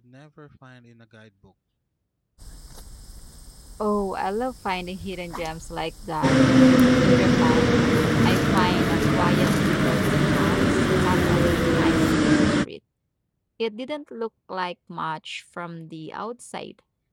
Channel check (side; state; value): both; identical; correlation 1.00